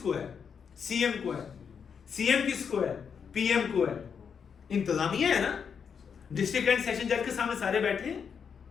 है? सीएम को है। सीएम किसको है? पीएम को है। इंतजामिया है ना, डिस्ट्रिक्ट एंड सेशन जज के सामने सारे बैठे हैं।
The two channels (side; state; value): right; quieter; 6.7 dB